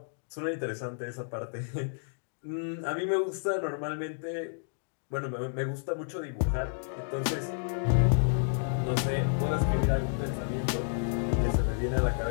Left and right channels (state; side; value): silent; right; digital silence